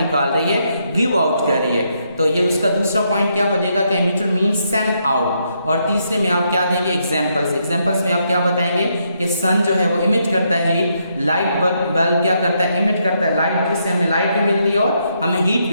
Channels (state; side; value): inverted; both; correlation -0.77